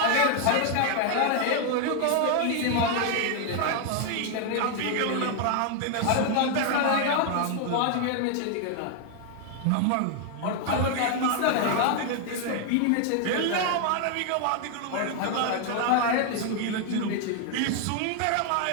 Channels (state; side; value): different; both; correlation 0.00